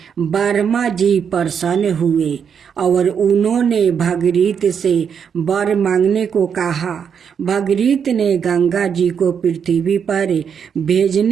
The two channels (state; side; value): quieter; left; 7.3 dB